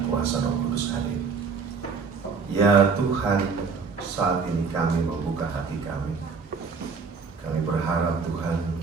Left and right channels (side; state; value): left; quieter; 5.2 dB